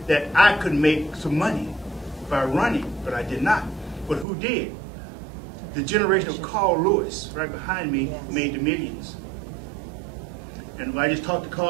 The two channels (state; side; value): drops out; left; at 4.2 s